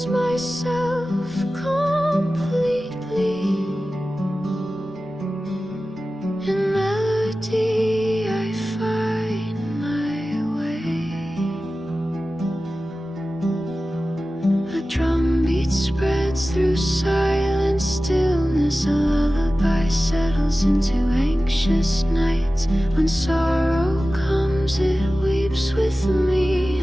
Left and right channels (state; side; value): normal; both; correlation 0.95